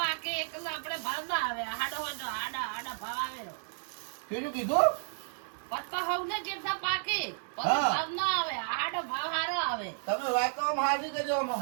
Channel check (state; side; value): silent; left; digital silence